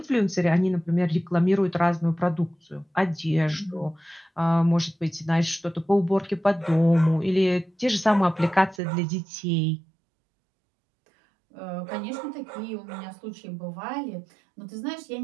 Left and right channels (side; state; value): left; drops out; at 8.8 s